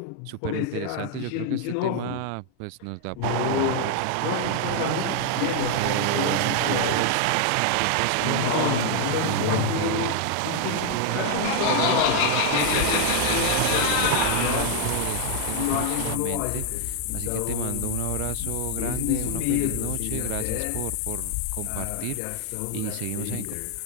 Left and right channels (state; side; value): different; both; correlation 0.00